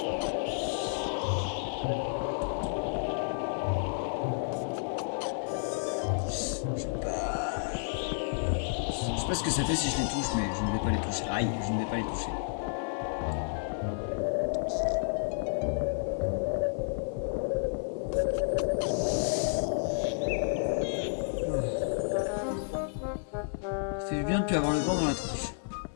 Je sais pas ce que ça fait si je les touche, mais je ne vais pas les toucher. Aïe, je ne vais pas les toucher. Ça fait bien de plus avoir le vent dans la tronche.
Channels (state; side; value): silent; right; 55 dB below the other